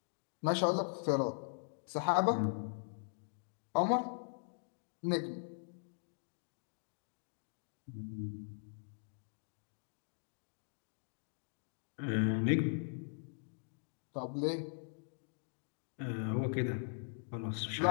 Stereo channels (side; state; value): right; silent; digital silence